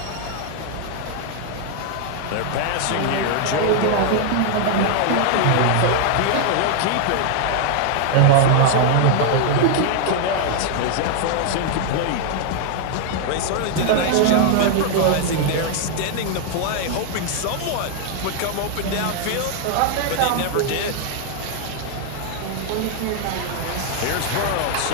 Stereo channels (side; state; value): both; different; correlation 0.00